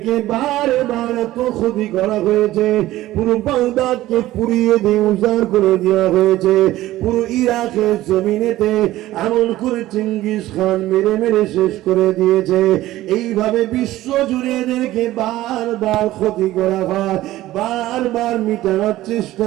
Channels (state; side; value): quieter; left; 15.7 dB